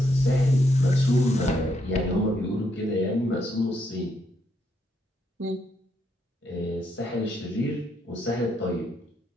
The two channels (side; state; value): both; normal; correlation 0.77